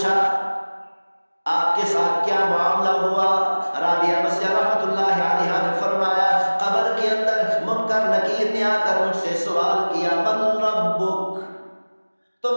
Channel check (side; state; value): both; inverted; correlation -1.00